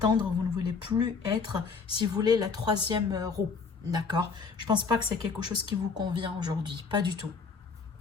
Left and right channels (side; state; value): right; quieter; 5.0 dB